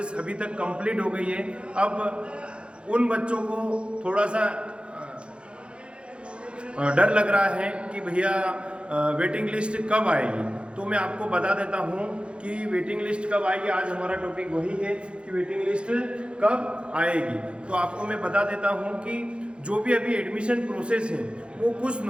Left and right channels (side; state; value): left; late; 0.057 ms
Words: अभी तक कंप्लीट हो गई है। अब उन बच्चों को थोड़ा सा डर लग रहा है कि भैया वेटिंग लिस्ट कब आएगी। तो मैं आपको बता देता हूँ कि वेटिंग लिस्ट कब आएगी। आज हमारा टॉपिक वही है कि वेटिंग लिस्ट कब आएगी। तो आपको मैं बता देता हूँ कि जो भी अभी एडमिशन प्रोसेस है वो कुछ